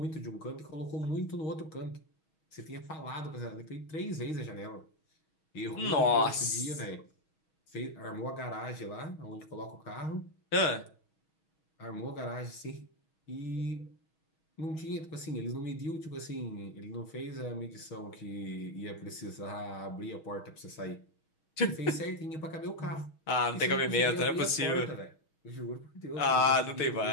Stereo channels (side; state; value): right; late; 6.3 ms